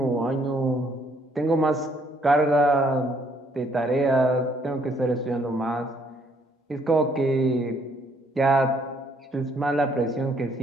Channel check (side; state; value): both; normal; correlation 0.67